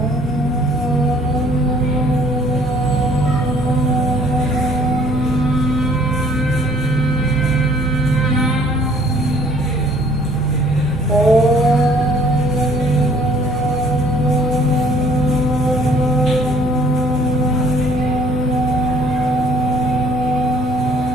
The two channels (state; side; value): normal; both; correlation 0.59